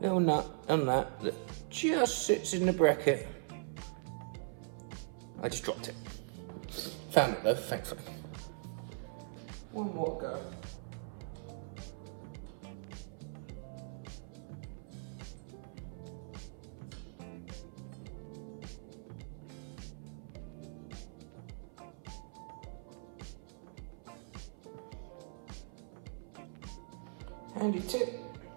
nut and that just sits in the bracket. I just dropped it. Found it though, thankfully. One more go. Handy tip,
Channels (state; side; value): silent; left; 51 dB below the other